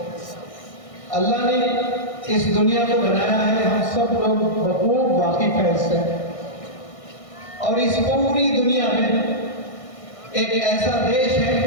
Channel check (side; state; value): right; late; 1.6 ms